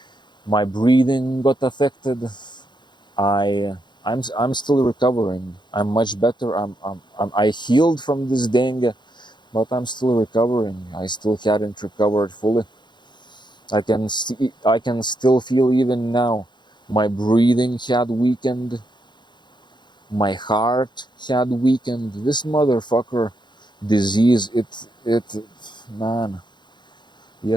my breathing got affected. I'm still recovering. I'm much better. I healed from this dengue, but I'm still recovering. I still hadn't recovered fully. I can still feel even now. My breathing had weakened. My heart had weakened. This motherfucker disease, man.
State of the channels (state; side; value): late; right; 0.22 ms